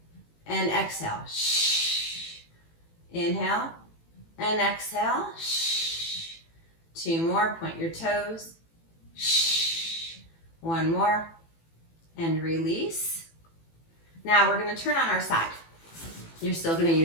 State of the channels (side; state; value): right; late; 18 ms